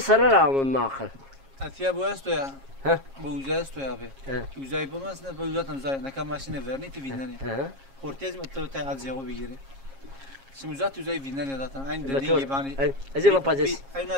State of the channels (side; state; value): left; late; 7.4 ms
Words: ما اخر اتيا bu esto ya ها bu uza esto ya abi uzay bu mesela bu uzatan uzay ne kadar maşine verni ti vinani ortez mi to ta azyago bigiri şimdi uzat uzay vinani zaten aynı dediğin gibi hani زي ما بادس